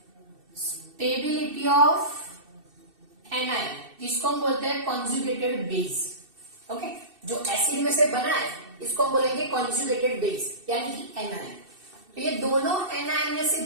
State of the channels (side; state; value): left; late; 2.6 ms